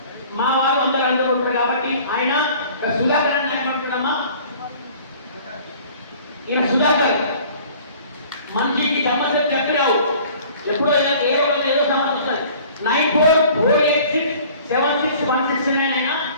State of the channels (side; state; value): both; inverted; correlation -0.49